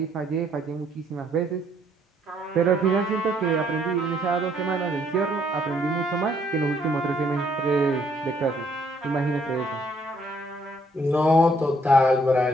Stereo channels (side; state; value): both; normal; correlation 0.67